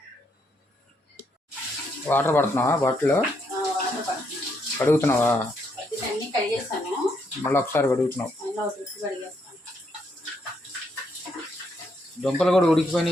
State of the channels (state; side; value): normal; both; correlation 0.76